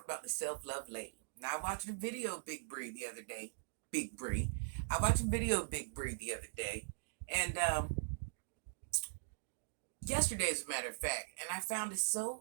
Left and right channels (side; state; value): left; silent; digital silence